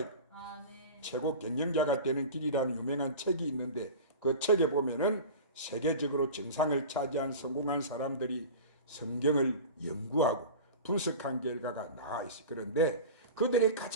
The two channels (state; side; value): inverted; both; correlation -0.33